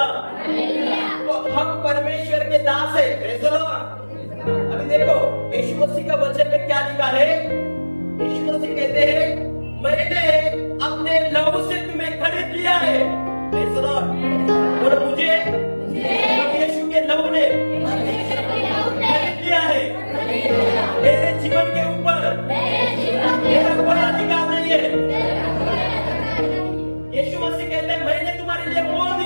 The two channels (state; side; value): inverted; both; correlation -1.00